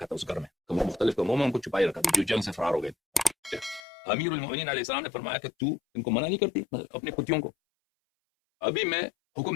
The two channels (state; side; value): drops out; right; at 3.8 s